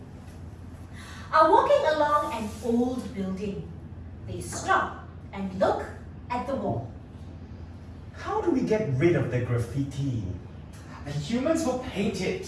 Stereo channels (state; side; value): identical; both; correlation 1.00